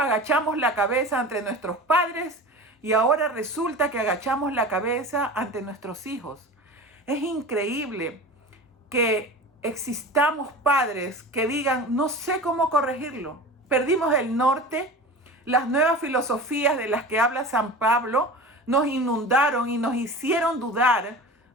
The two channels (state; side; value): normal; both; correlation 0.34